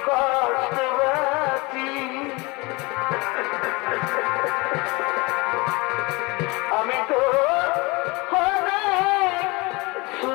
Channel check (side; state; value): right; quieter; 25.5 dB